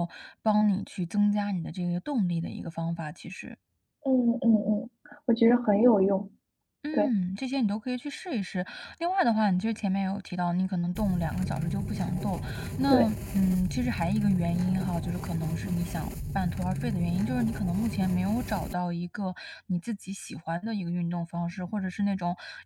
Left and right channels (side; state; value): both; identical; correlation 1.00